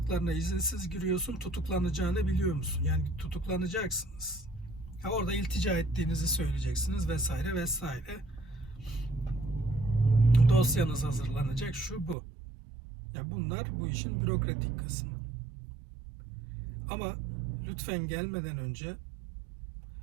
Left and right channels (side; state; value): left; drops out; at 12.2 s